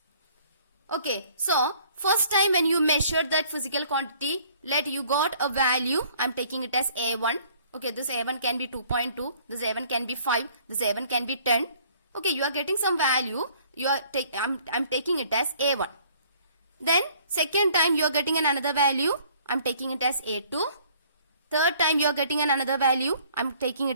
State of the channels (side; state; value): both; inverted; correlation -0.58